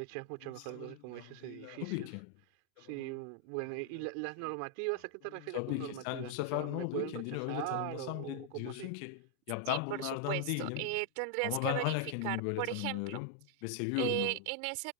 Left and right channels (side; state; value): both; different; correlation 0.00